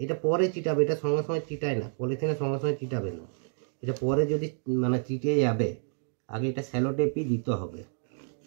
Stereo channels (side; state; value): left; silent; 59 dB below the other